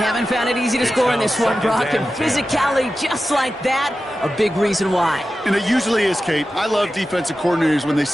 haven't found it easy to score in this one, Brock, and physicality just like that, a big reason why. And it usually is, Kate. I love defensive coordinators when they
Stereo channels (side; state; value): both; normal; correlation 0.93